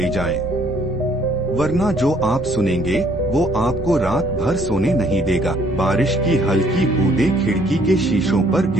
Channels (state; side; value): normal; both; correlation 0.63